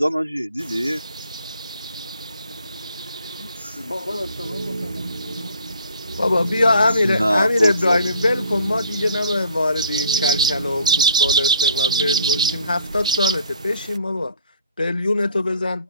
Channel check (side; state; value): both; inverted; correlation -0.56